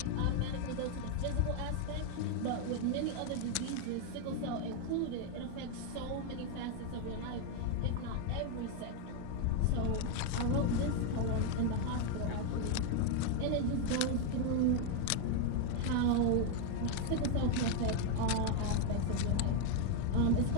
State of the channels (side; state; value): both; different; correlation 0.01